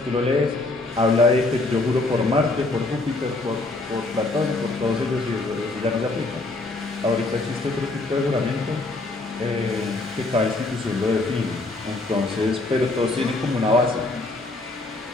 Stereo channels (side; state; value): right; quieter; 3.0 dB